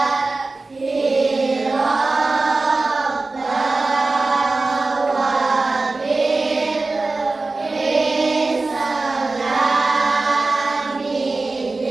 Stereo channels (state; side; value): quieter; left; 3.5 dB